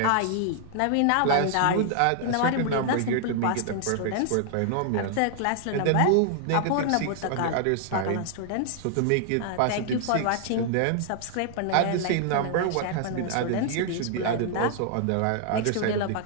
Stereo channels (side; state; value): both; different; correlation 0.00